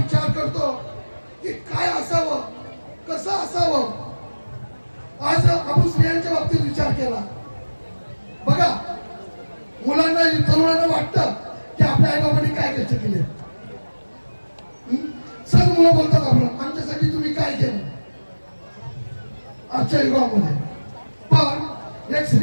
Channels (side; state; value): both; inverted; correlation -1.00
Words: करतो की काय असावं, कसं असावं. आज आपण स्त्रियांच्या बाबतीत विचार केला. बघा, मुलांना तरुणांना वाटतं की आपल्या आई बाबांनी काय कष्ट केले. सर्व मुलं बोलतात आपण आमच्यासाठी तुम्ही काय केलं आजच्या युगामध्ये. पण एक